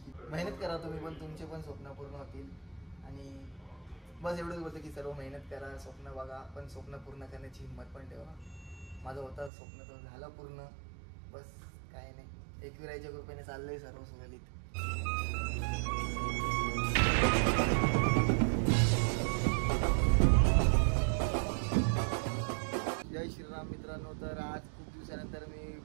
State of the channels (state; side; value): drops out; left; at 9.5 s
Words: मेहनत करा तुम्ही पण, तुमचे पण स्वप्न पूर्ण होतील. आणि बस एवढंच बोलतं की सर्व मेहनत करा, स्वप्न बघा, पण स्वप्न पूर्ण करण्याची हिंमत पण ठेवा. माझं होतं स्वप्न तर झालं पूर्ण. बस काय नाही, एकविराईच्या कृपेने चाललंय सर्व सुरळीत. जय श्रीराम मित्रांनो. तर आज खूप दिवसानंतर मी